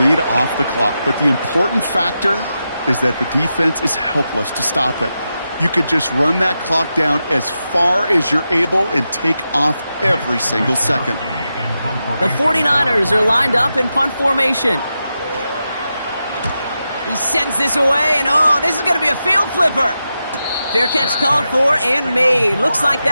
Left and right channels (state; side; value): inverted; both; correlation -0.89